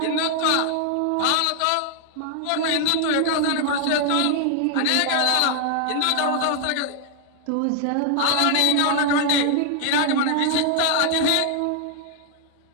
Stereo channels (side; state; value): both; different; correlation 0.00